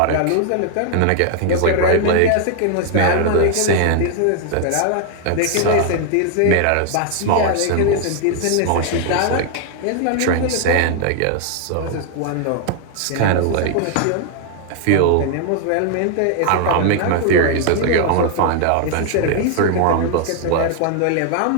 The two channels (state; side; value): different; both; correlation 0.00